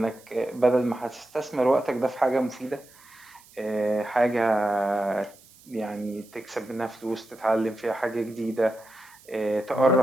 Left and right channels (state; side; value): noise; right; hiss, 25 dB below the sound